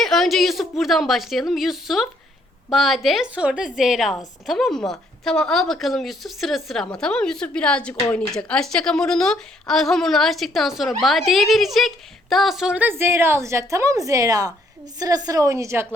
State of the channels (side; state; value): both; normal; correlation 0.68